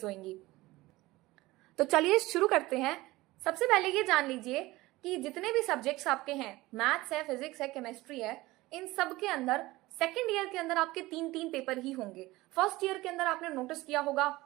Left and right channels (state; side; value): quieter; left; 19.3 dB